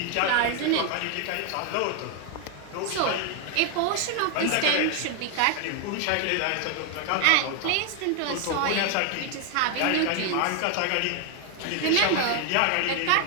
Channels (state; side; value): different; both; correlation 0.00